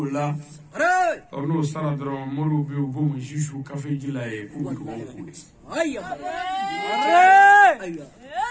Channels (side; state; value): both; identical; correlation 1.00